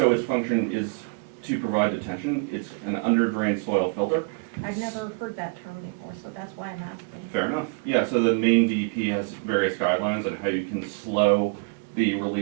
its function is to provide detention. It's an under-drained soil filter. I've never heard that term before, so that's why I'm asking. Fair enough. Yeah, so the main DEP has various guidelines on how you can slow the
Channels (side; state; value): left; quieter; 34.7 dB